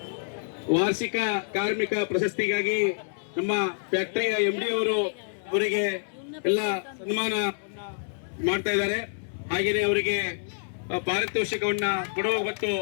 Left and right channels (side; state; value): right; silent; 60 dB below the other